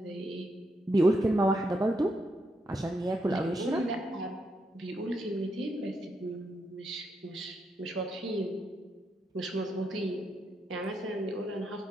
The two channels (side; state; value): both; normal; correlation 0.80